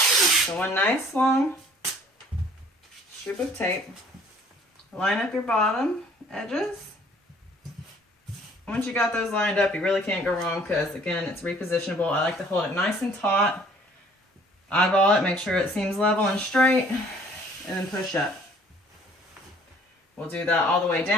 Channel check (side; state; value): both; normal; correlation 0.56